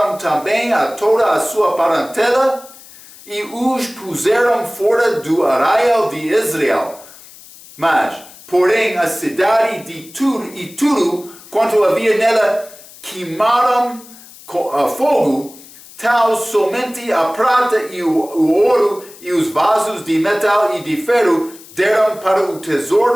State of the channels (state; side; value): noise; left; hiss, 20 dB below the sound